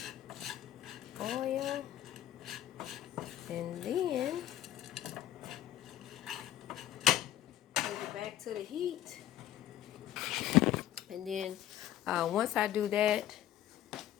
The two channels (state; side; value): quieter; right; 12.4 dB